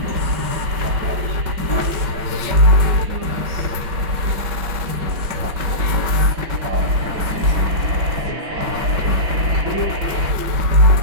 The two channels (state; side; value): late; left; 5.3 ms